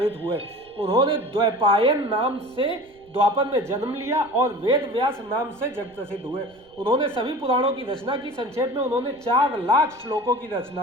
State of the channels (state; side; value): noise; right; rumble, 29 dB below the sound